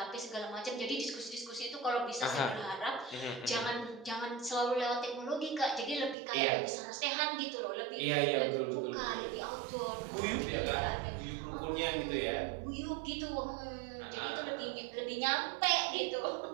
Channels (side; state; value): left; drops out; at 6.2 s